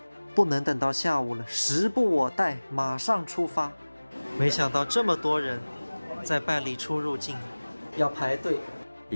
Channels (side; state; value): both; inverted; correlation -1.00